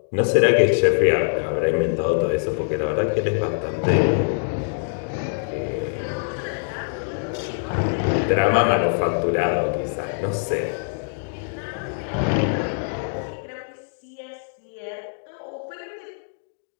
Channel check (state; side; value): silent; right; digital silence